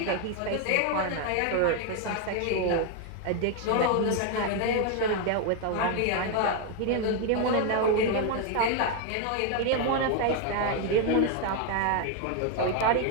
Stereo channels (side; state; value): both; different; correlation 0.01